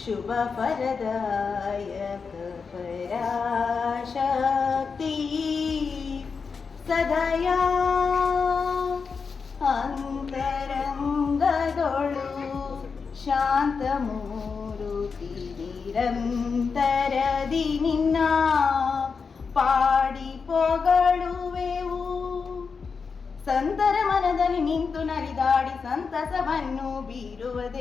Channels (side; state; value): right; quieter; 5.3 dB